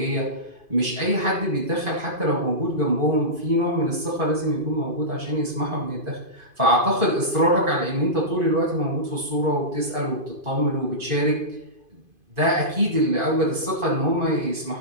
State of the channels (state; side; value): late; left; 2.5 ms